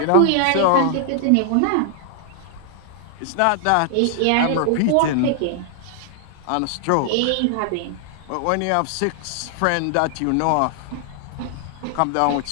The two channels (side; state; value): both; different; correlation 0.00